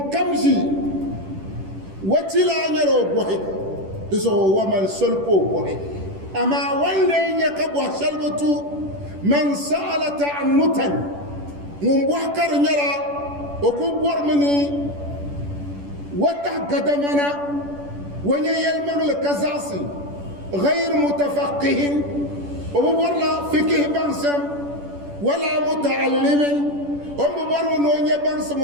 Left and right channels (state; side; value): late; left; 10 ms